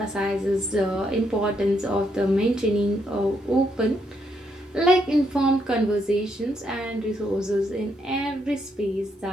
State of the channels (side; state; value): both; normal; correlation 0.76